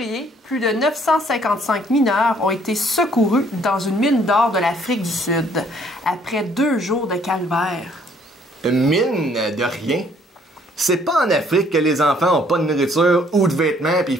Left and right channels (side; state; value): both; normal; correlation 0.62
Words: plus de 955 mineurs ont été secourus dans une mine d'or de l'Afrique du Sud, après 2 jours de calvaire. Une mine de rien? C'est pas en Afrique que les enfants ont pas de nourriture ou de vêtements, puis il